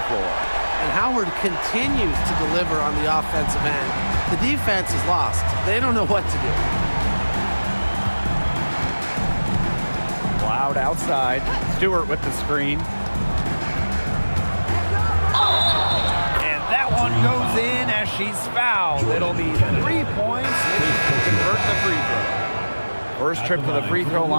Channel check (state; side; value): inverted; both; correlation -1.00